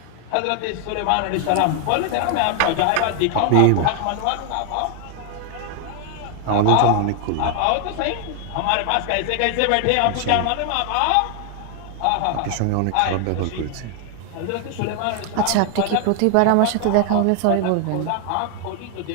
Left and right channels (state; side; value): different; both; correlation 0.00